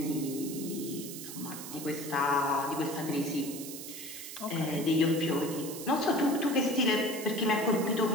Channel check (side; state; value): right; noise; hiss, 10 dB below the sound